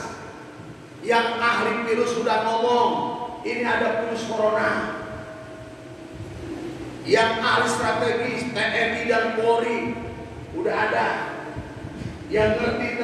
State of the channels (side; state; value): both; identical; correlation 1.00